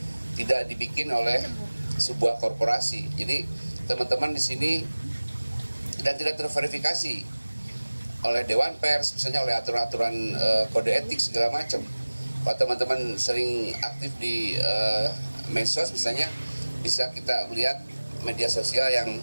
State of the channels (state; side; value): inverted; both; correlation -1.00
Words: tidak dibikin oleh sebuah korporasi. Jadi teman-teman di sini, dan tidak terverifikasi oleh Dewan Pers, misalnya oleh aturan-aturan kode etik segala macam. Kalau teman-teman sering aktif di medsos misalnya, bisa kita melihat media sosial yang